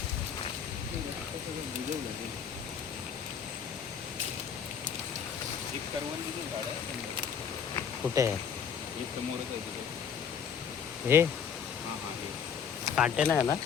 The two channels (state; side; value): quieter; right; 7.3 dB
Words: एक करवंदीचं झाड आहे. कुठे आहे हे समोरच आहे तिथे. हे? हां हां हे कांटे नाही ना.